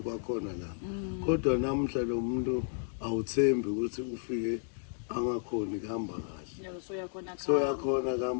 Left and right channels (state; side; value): silent; right; digital silence